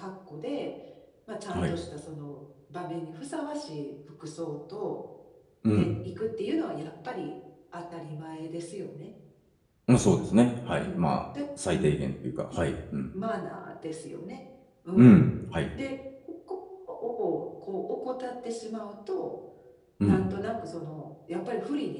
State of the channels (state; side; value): identical; both; correlation 1.00